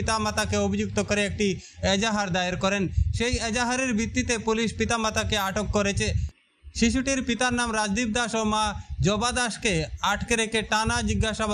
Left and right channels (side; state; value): both; identical; correlation 1.00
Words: অভিযুক্ত করে একটি এজাহার দায়ের করেন। সেই এজাহারের ভিত্তিতে পুলিশ পিতামাতাকে আটক করেছে। শিশুটির পিতার নাম রাজদীপ দাস ও মা জবা দাসকে আটকে রেখে টানা